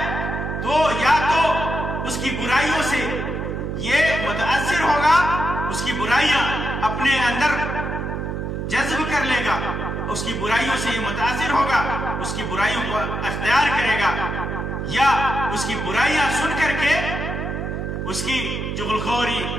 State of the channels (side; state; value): right; noise; hum, 3 dB below the sound